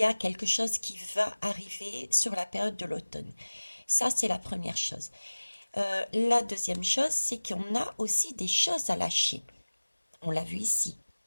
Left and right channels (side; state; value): both; inverted; correlation -1.00